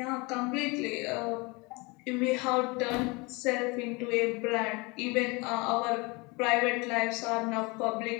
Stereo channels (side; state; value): right; quieter; 26.9 dB